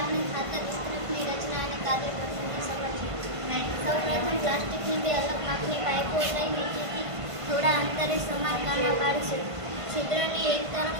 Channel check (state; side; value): late; left; 1.5 ms